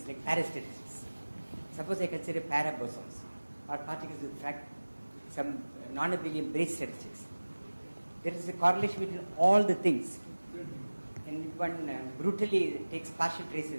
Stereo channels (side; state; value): both; inverted; correlation -1.00